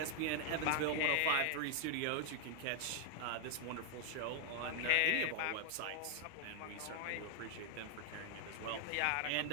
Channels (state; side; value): different; both; correlation 0.00